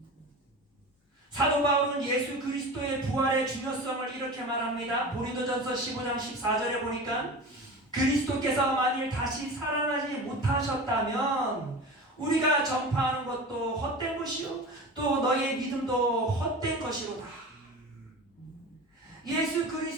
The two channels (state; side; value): normal; both; correlation 0.32